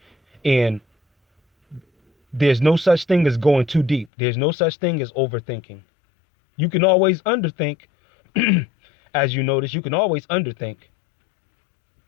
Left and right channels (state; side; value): drops out; right; at 4.1 s